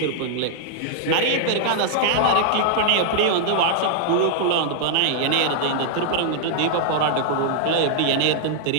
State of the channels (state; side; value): different; both; correlation -0.01